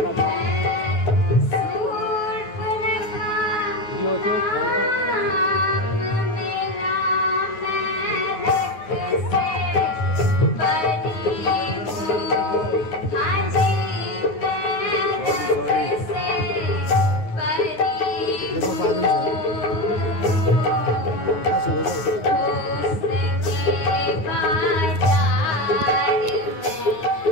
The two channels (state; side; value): late; right; 9.4 ms